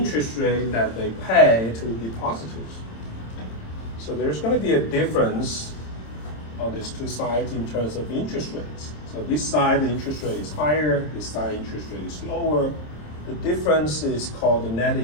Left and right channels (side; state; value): right; late; 27 ms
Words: rate that they pay to depositors. So there's going to be a difference on these two sides in terms of interest rates. So this side, the interest rate is higher, this side, interest rate is lower. The difference is called the net